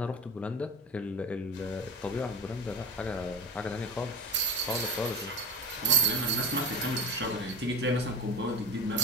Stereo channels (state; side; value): normal; both; correlation 0.28